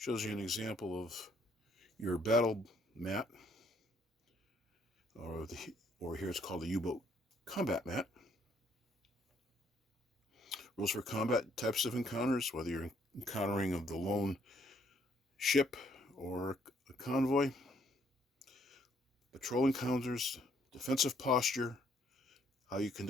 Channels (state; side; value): normal; both; correlation 0.67